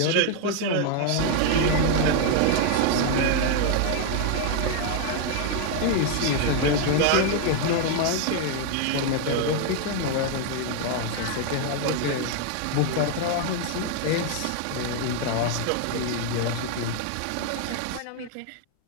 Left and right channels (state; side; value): different; both; correlation 0.00